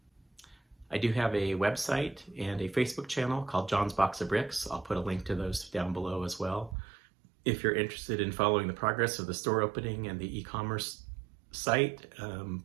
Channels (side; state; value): left; drops out; at 6.8 s